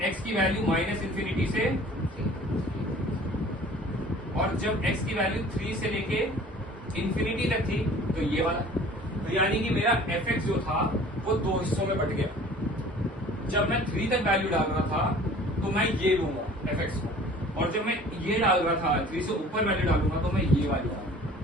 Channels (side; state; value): both; normal; correlation 0.48